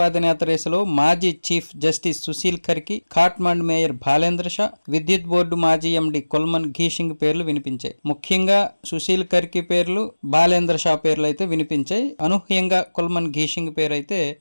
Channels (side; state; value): both; inverted; correlation -1.00